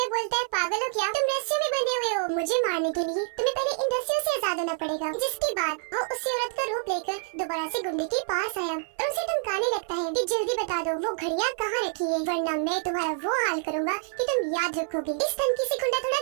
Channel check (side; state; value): left; silent; 55 dB below the other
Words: बोलता है, पागल हो क्या? तुम रस्सियों में बंधे हुए हो, मुझे मारने के लिए तुम्हें पहले इन रस्सियों से आजाद होना पड़ेगा। जिसके बाद वो उस औरत का रूप लेकर दोबारा से गुंडे के पास आया और उसे धमकाने लगता है कि जल्दी बता दो वो घड़ियां कहाँ रखी है, वरना मैं तुम्हारा वो हाल करूंगा कि तुम याद रखोगे। इस धमकी से गुंडा थोड़ा